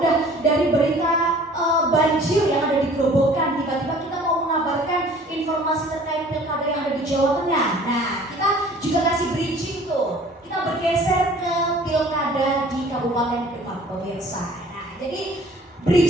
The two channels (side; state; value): both; normal; correlation 0.51